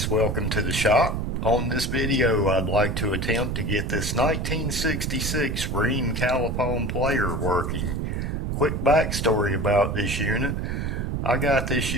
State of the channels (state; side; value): noise; right; rumble, 1 dB below the sound